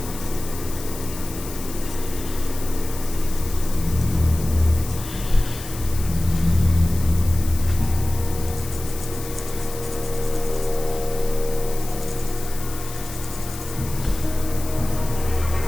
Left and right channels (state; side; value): noise; left; hiss, 12 dB below the sound